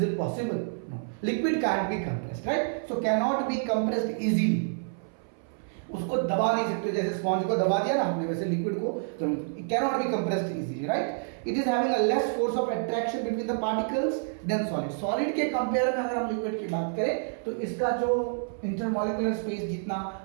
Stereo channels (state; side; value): silent; left; 59 dB below the other